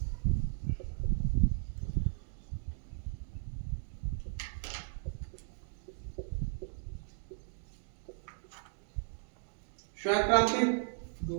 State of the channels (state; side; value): silent; left; digital silence